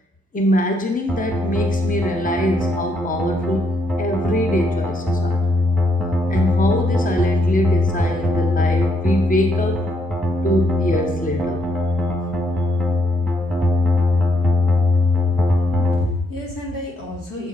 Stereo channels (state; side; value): normal; both; correlation 0.74